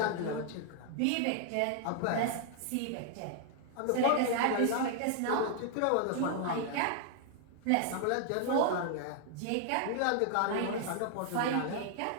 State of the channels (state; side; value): different; both; correlation 0.00